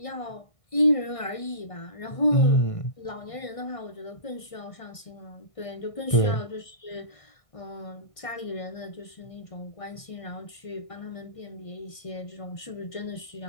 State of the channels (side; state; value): right; late; 1.6 ms